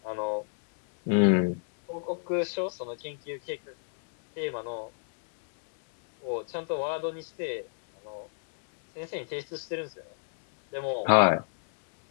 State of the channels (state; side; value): silent; right; digital silence